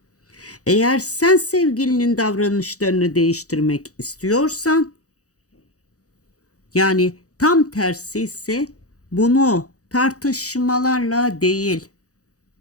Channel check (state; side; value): late; right; 0.66 ms